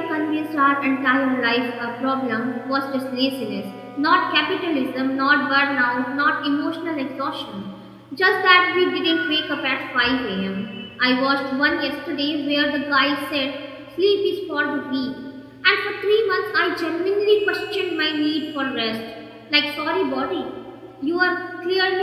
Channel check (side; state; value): both; identical; correlation 1.00